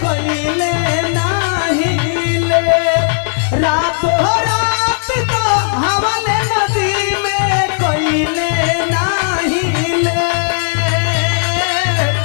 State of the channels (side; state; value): right; silent; digital silence